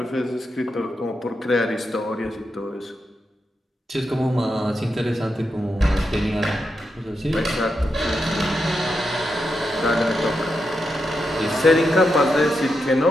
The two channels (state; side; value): normal; both; correlation 0.85